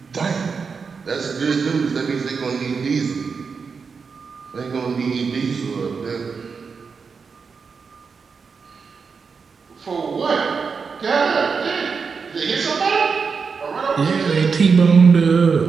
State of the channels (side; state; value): left; quieter; 5.4 dB